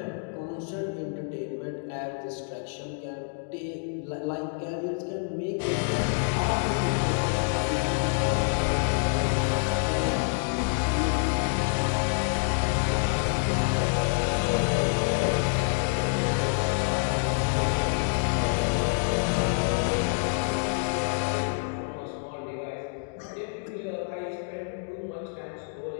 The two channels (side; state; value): right; silent; 60 dB below the other